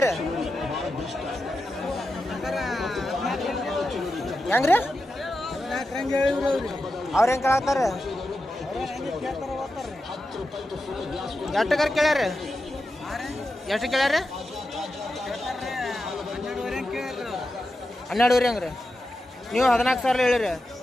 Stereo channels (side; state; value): both; normal; correlation 0.90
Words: ಹೆಂಗ್ರಿ ಅವ್ರು ಹೆಂಗೆ ಕೇಳತ್ತಾರ? ಎಷ್ಟಕ್ಕಾರ ಕೇಳ್ಯಾರ? ಎಷ್ಟು ಕೇಳ್ಯಾರ? 12,500 ಹೆಂಗ್ರಿ? ನೀವು 14,000 ಹೇಳಿರಿ.